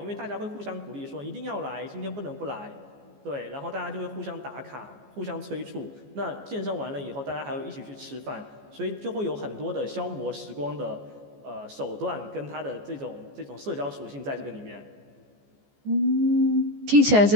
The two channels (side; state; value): left; late; 14 ms